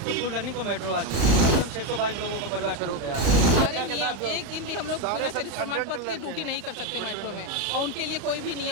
तो फुल रनिंग को मेट्रो आ चुकी है। मतलब 622 लोगों का परिवार शुरू हो गया है। एक दिन भी हम लोग प्रमाण पत्र की ड्यूटी नहीं कर सकते मेट्रो में, और उनके लिए कोई भी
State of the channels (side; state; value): left; late; 37 ms